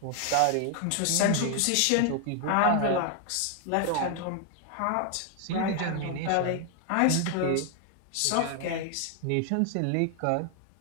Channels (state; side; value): different; both; correlation 0.00